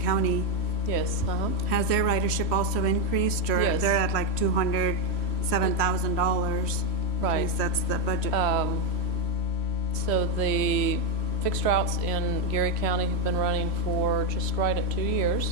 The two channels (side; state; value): right; late; 3.1 ms